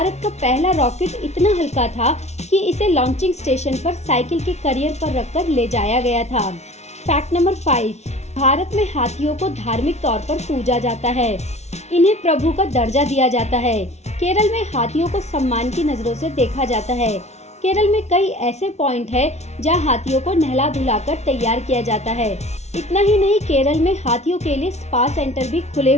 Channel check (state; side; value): late; right; 0.32 ms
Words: का पहला रॉकेट इतना हल्का था कि इसे लॉन्चिंग स्टेशन पर साइकिल के करियर पर रखकर ले जाया गया था। फैक्ट नंबर 5, भारत में हाथियों को धार्मिक तौर पर पूजा जाता है। इन्हें प्रभु का दर्जा दिया जाता है। केरल में हाथियों को सम्मान की नजरों से देखा जाता है। केरल में कई ऐसे पॉइंट है जहां हाथियों को नहला धुलाकर तैयार किया जाता है। इतना ही नहीं, केरल में हाथियों के लिए स्पा सेंटर भी खुले